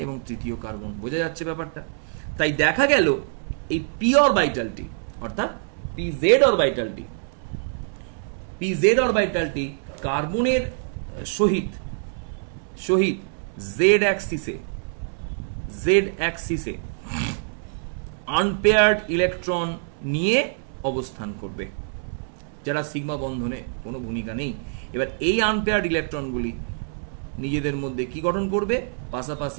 এবং তৃতীয় কার্বন। বোঝা যাচ্ছে ব্যাপারটা? তাই দেখা গেল এই পি অরবিটালটি, অর্থাৎ পিজেড অরবিটালটি কার্বনের সহিত জেড অ্যাক্সিসে আনপেয়ার্ড ইলেকট্রন নিয়ে অবস্থান করবে, যারা সিগমা বন্ধনে কোনো ভূমিকা নেই। এবার এই আনপেয়ার্ড ইলেকট্রনগুলি নিজেদের মধ্যে কি গঠন করবে?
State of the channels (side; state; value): left; silent; 62 dB below the other